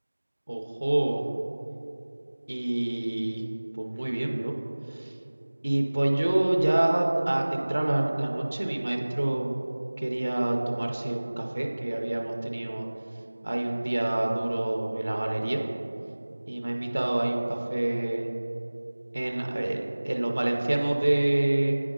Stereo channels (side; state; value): both; inverted; correlation -1.00